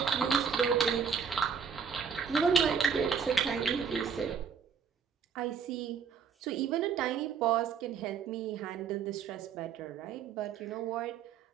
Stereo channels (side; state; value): left; quieter; 6.7 dB